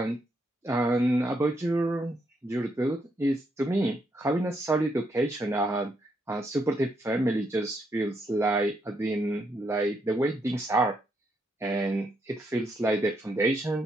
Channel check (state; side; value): normal; both; correlation 0.77